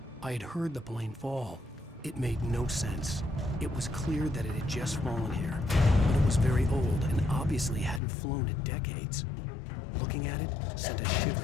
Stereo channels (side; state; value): right; drops out; at 8.0 s